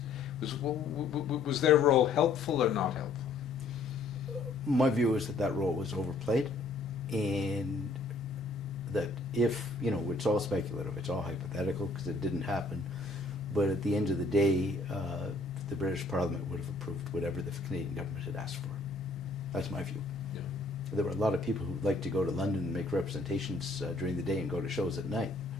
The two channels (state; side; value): quieter; right; 3.2 dB